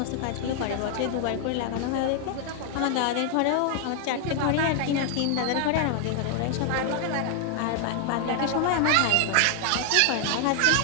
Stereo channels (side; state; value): both; different; correlation 0.00